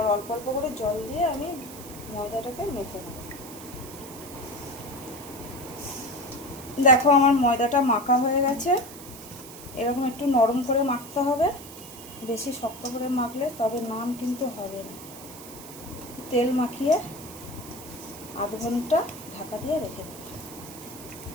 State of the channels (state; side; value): noise; right; hiss, 15 dB below the sound